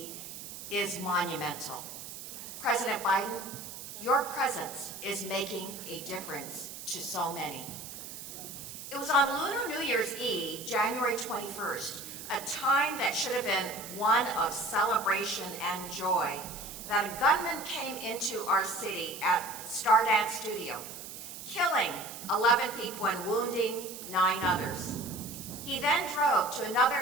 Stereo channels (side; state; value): right; noise; hiss, 11 dB below the sound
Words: is monumental. President Biden, your presence is making a difference to so many. It was on Lunar New Year's Eve, January 21st, a time that should have been one of celebration and joy, that a gunman came into our city at Stardance Studio, killing 11 people and wounding 9 others. He then drove to